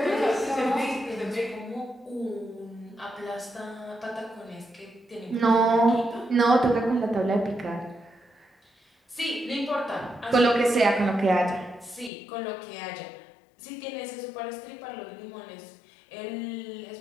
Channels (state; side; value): drops out; right; at 12.1 s